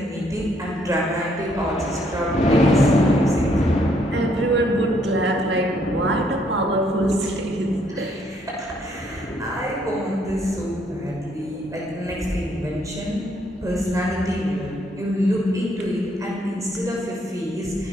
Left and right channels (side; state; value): both; normal; correlation 0.69